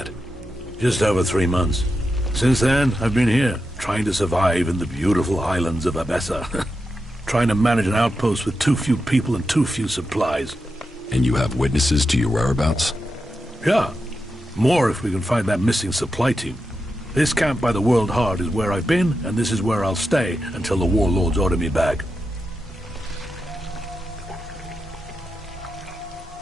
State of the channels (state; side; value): normal; both; correlation 0.88